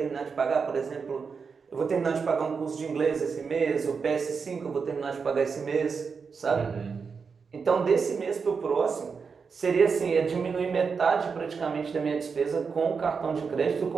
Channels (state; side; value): quieter; left; 5.5 dB